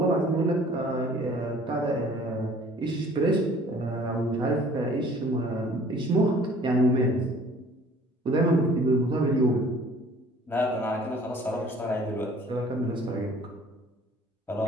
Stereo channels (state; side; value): normal; both; correlation 0.52